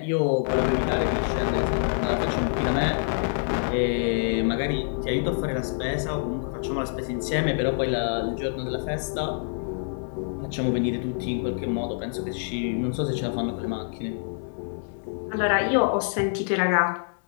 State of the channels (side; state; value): right; silent; 61 dB below the other